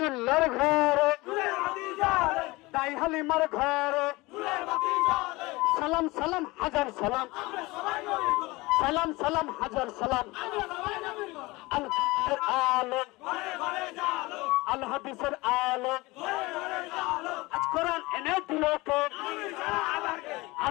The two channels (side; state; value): right; quieter; 22.0 dB